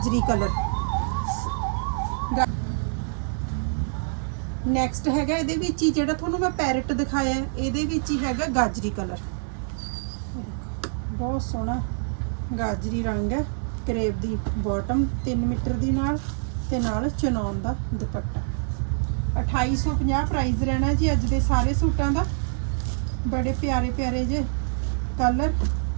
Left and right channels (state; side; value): silent; left; 61 dB below the other